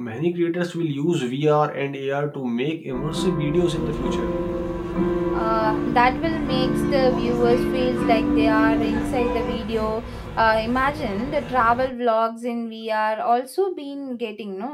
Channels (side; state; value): both; identical; correlation 1.00